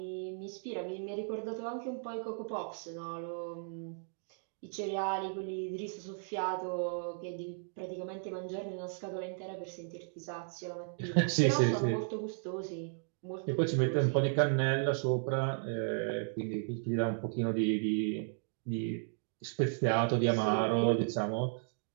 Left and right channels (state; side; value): silent; left; digital silence